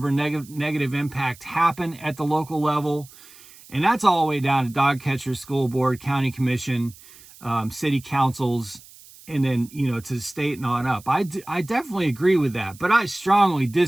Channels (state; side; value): noise; right; hiss, 22 dB below the sound